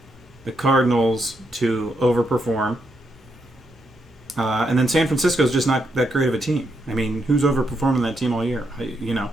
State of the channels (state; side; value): normal; both; correlation 0.80